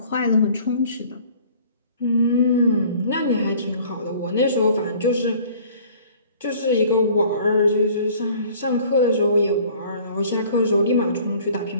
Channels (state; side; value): inverted; both; correlation -0.52